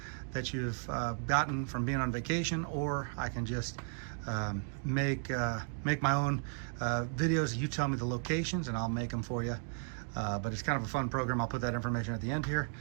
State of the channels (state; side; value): silent; left; 55 dB below the other